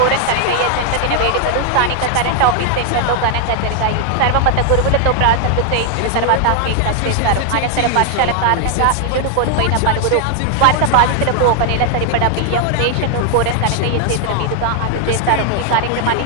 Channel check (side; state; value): both; different; correlation 0.00